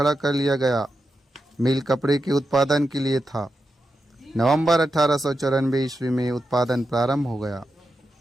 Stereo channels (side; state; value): both; normal; correlation 0.88